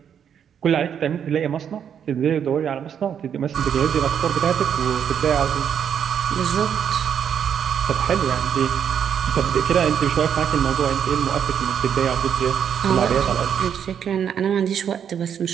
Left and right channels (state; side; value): quieter; left; 8.3 dB